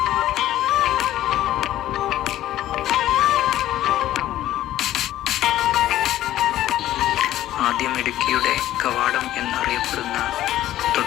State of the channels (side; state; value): right; quieter; 13.6 dB